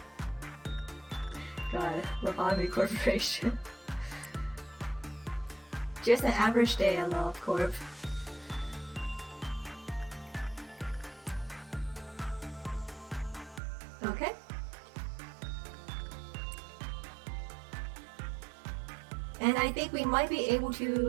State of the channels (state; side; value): drops out; left; at 13.6 s